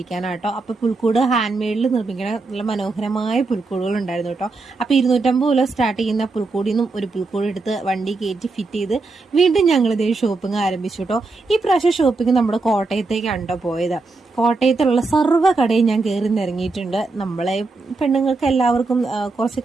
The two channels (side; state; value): left; quieter; 3.7 dB